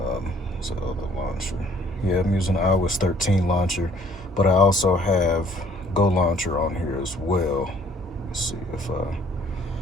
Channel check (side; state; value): both; normal; correlation 0.60